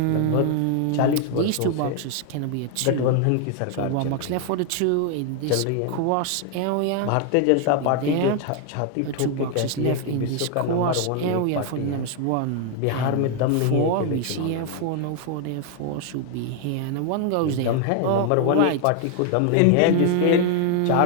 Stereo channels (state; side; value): different; both; correlation 0.00